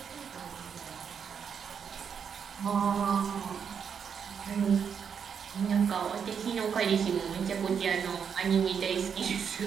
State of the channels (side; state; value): left; quieter; 7.1 dB